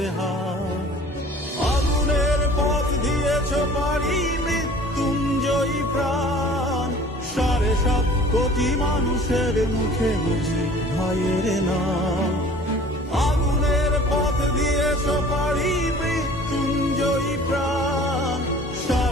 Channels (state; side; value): normal; both; correlation 0.48